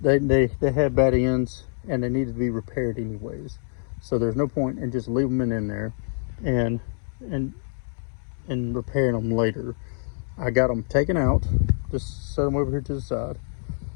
had bad ends and they needed to be repaired anyways. So there's no point in just leaving them in there and repairing them later. I got them taken out, just set them over here to the side,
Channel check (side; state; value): right; silent; 61 dB below the other